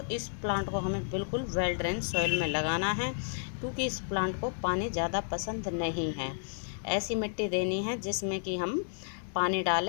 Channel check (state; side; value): silent; right; digital silence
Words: इस प्लांट को हमें बिल्कुल वेल ड्रेन सॉइल में लगाना है, क्योंकि इस प्लांट को पानी ज़्यादा पसंद नहीं है। ऐसी मिट्टी देनी है जिसमें कि हम पानी